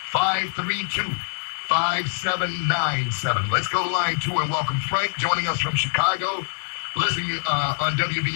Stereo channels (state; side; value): silent; right; 63 dB below the other